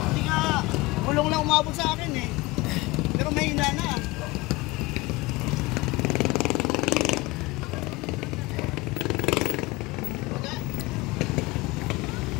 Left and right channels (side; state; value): right; quieter; 22.0 dB